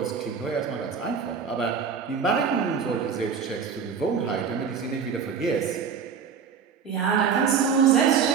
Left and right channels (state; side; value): quieter; left; 6.5 dB